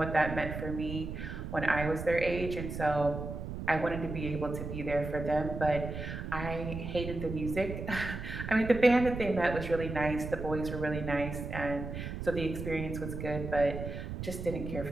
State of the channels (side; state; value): right; noise; rumble, 6 dB below the sound